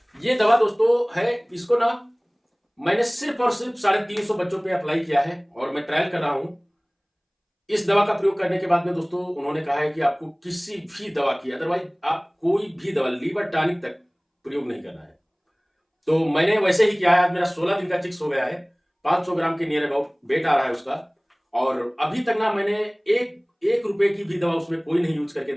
ये दवा दोस्तों है, इसको ना मैंने सिर्फ और सिर्फ 350 बच्चों पे अप्लाई किया है और मैं ट्रायल कर रहा हूं। इस दवा का प्रयोग करने के बाद में दोस्तों उन्होंने कहा है कि आपको किसी भी दवा की, अदरवाइज आप कोई भी दवा लीवर टॉनिक तक प्रयोग नहीं करना है। तो मैंने वैसे ही किया है। आज मेरा 16 दिन का चिक्स हो गया है, 500 ग्राम के नियर अबाउट वेट आ रहा है उसका, और अभी तक ना मैंने एक रुपए की भी दवा उसमें कोई नहीं यूज करके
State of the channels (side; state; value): both; identical; correlation 1.00